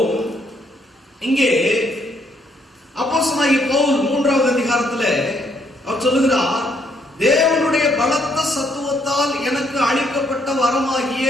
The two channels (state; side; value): normal; both; correlation 0.70